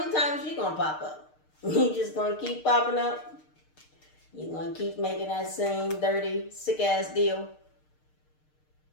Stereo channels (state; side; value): late; right; 6.6 ms